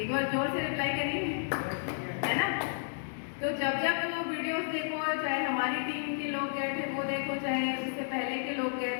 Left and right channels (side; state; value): right; silent; digital silence